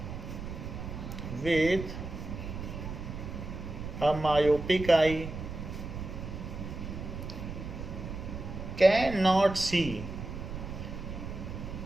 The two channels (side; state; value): right; noise; rumble, 7 dB below the sound